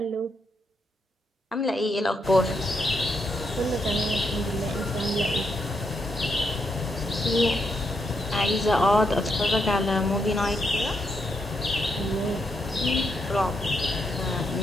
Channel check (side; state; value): both; normal; correlation 0.80